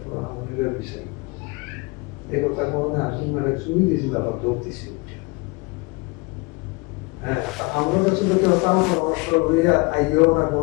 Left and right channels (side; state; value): right; quieter; 27.0 dB